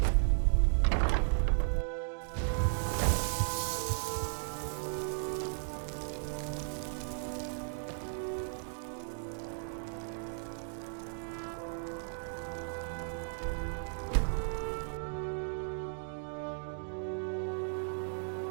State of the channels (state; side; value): silent; left; digital silence